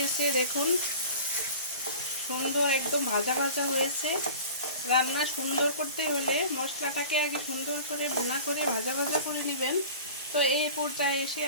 দেখুন সুন্দর একদম ভাজা ভাজা হয়েছে। রান্না সুন্দর করতে হলে মশলাটাকে আগে সুন্দর করে ভুনা করে ভাজা ভাজা করে নেবেন। তো এই পর্যায়ে এসে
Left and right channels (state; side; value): inverted; both; correlation -0.39